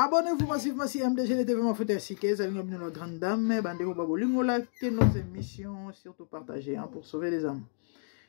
massivement si MDG les TV Mafuta Sike, ça vient de nos grandes dames, bandez-vous babolingo, likez nos émissions, surtout partagez pour sauver les âmes.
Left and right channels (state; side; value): silent; right; digital silence